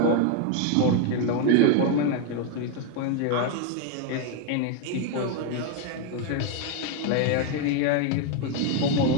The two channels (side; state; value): both; different; correlation 0.01